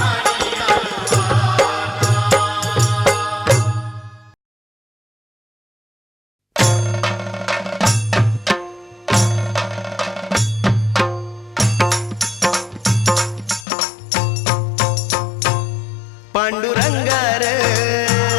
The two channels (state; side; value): drops out; right; at 13.7 s